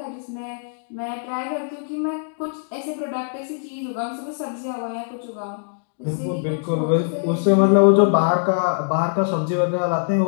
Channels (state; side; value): silent; right; digital silence